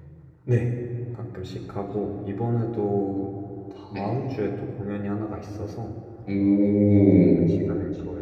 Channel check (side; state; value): both; identical; correlation 1.00